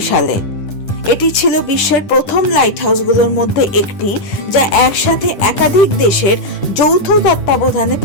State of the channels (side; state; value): right; late; 10 ms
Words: সালে। এটি ছিল বিশ্বের প্রথম লাইট হাউসগুলোর মধ্যে একটি, যা একসাথে একাধিক দেশের যৌথ তত্ত্বাবধানে